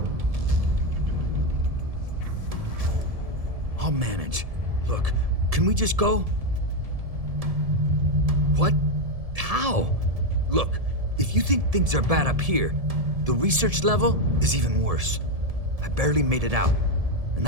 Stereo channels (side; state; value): left; late; 1.7 ms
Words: I'll manage. Look, can we just go? What? How? Look, if you think things are bad up here, the research level is even worse. I barely made it out, and